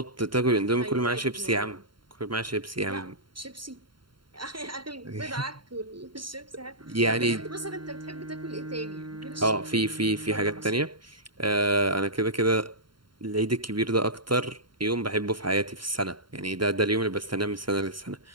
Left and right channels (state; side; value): late; left; 0.72 ms